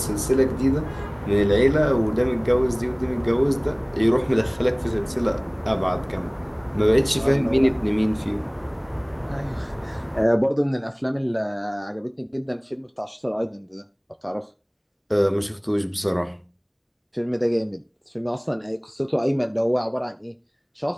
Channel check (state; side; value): identical; both; correlation 1.00